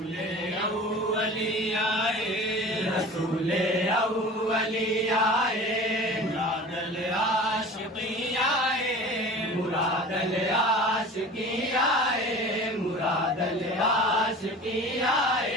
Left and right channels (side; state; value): both; normal; correlation 0.39